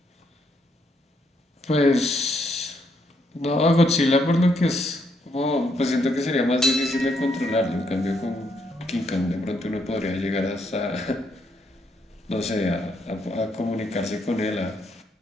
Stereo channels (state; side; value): normal; both; correlation 0.74